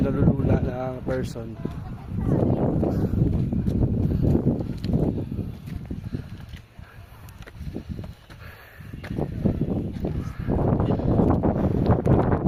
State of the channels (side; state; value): both; identical; correlation 1.00